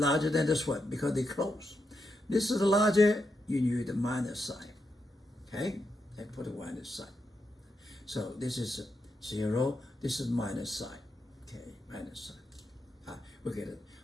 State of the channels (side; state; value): both; normal; correlation 0.84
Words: than this one because they're close. This is larger, you need the minus sign, okay? And put a minus sign. So this is 0, this is minus sign, okay, minus sign. We get it,